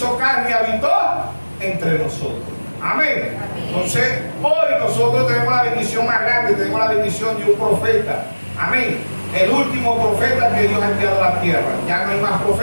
carne y habitó entre nosotros. Amén. Entonces, hoy nosotros tenemos la bendición más grande, tenemos la bendición de un profeta. Amén. El último profeta que Dios ha enviado a la tierra. Ya no hay más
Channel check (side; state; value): both; inverted; correlation -1.00